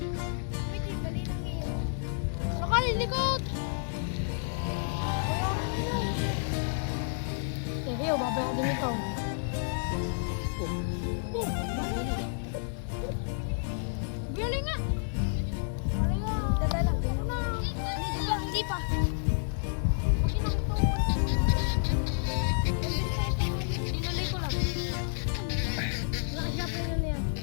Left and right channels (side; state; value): right; silent; digital silence